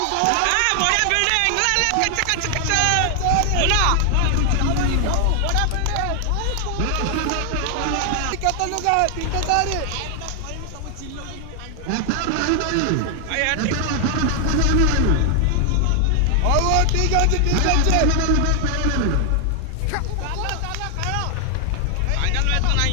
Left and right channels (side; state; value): both; different; correlation 0.00